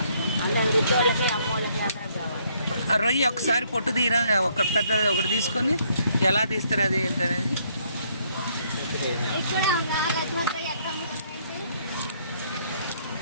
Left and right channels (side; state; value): both; inverted; correlation -0.68